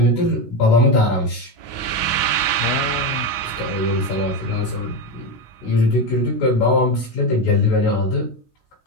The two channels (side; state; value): right; late; 16 ms